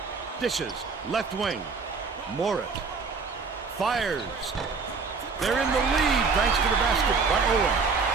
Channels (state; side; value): quieter; left; 4.8 dB